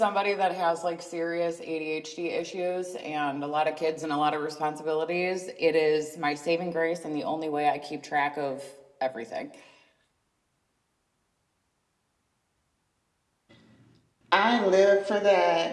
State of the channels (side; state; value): both; identical; correlation 1.00